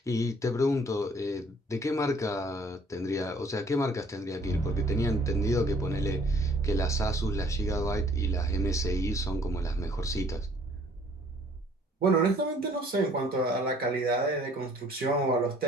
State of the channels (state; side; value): normal; both; correlation 0.58